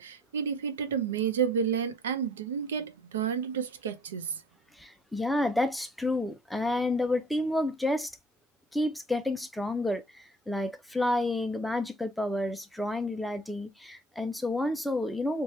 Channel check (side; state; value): both; normal; correlation 0.54